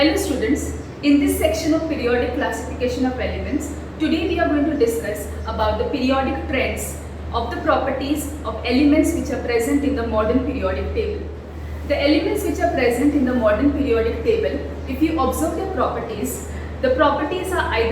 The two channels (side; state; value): both; identical; correlation 1.00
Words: Hello students, in this section of periodic classification of elements, today we are going to discuss about the periodic trends of the properties of elements which are present in the modern periodic table. The elements which are present in the modern periodic table, if you observe their properties, the properties are